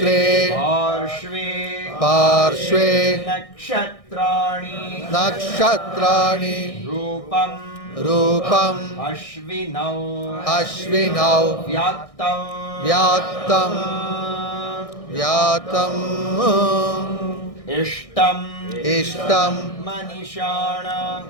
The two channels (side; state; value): right; late; 1.6 ms